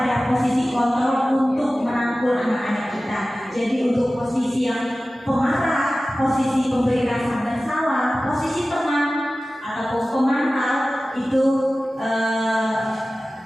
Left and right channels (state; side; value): normal; both; correlation 0.96